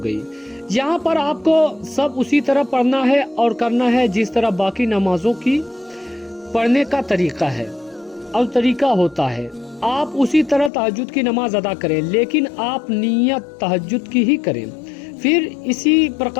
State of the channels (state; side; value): drops out; right; at 10.7 s